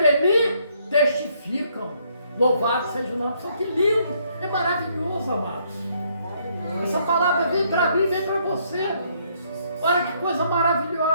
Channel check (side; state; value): both; inverted; correlation -0.69